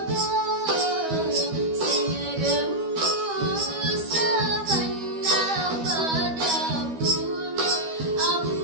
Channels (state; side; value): late; left; 12 ms